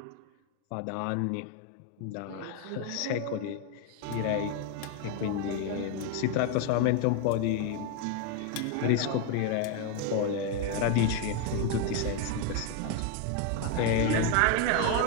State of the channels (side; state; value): both; different; correlation 0.01